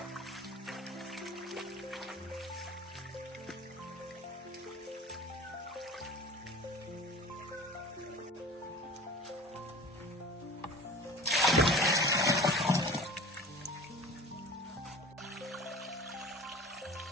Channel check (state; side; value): normal; both; correlation 0.40